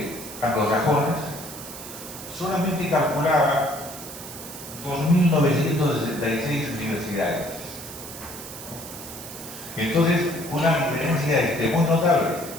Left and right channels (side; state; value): right; noise; hiss, 12 dB below the sound